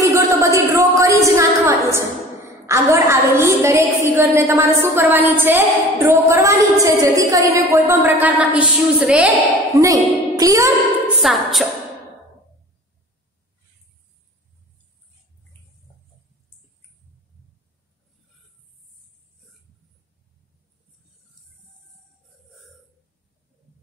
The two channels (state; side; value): normal; both; correlation 0.43